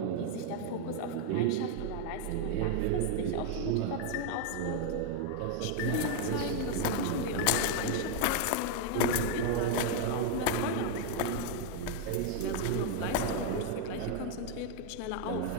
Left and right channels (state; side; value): different; both; correlation 0.01